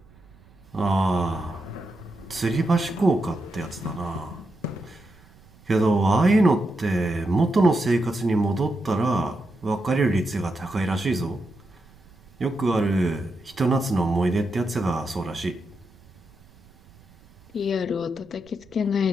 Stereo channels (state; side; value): noise; right; rumble, 27 dB below the sound